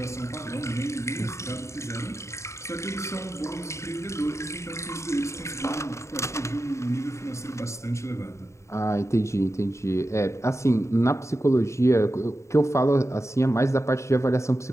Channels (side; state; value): right; late; 0.14 ms